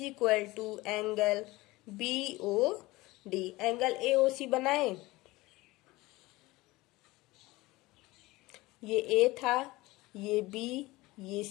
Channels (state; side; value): quieter; right; 20.3 dB